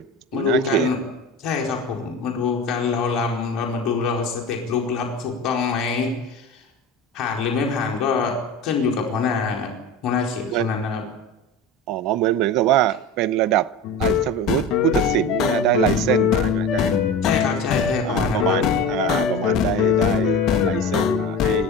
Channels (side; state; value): both; normal; correlation 0.30